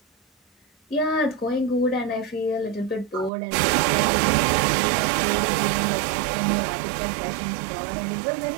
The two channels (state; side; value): drops out; left; at 3.3 s